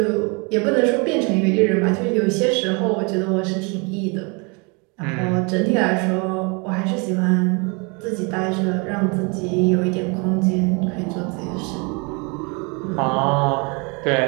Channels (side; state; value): left; quieter; 31.5 dB